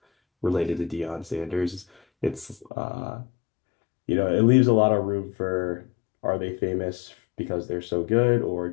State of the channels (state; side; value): drops out; right; at 2.7 s